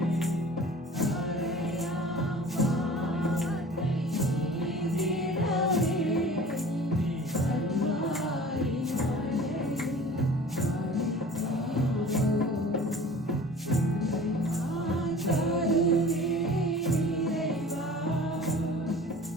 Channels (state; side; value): normal; both; correlation 0.44